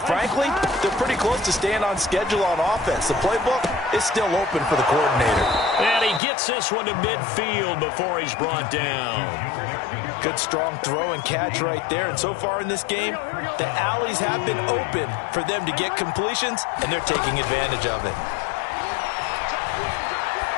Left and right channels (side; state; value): right; drops out; at 6.2 s